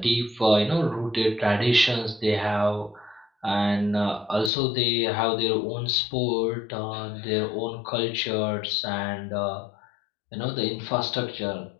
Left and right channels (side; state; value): right; drops out; at 4.5 s